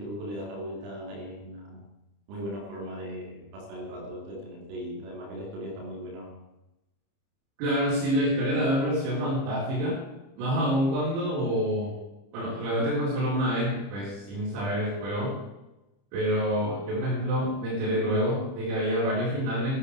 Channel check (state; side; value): late; left; 30 ms